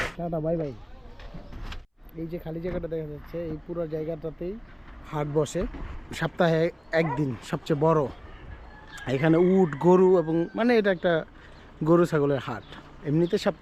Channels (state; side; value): identical; both; correlation 1.00